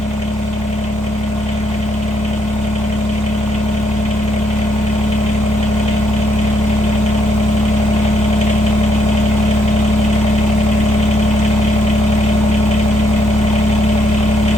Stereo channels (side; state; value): both; normal; correlation 0.74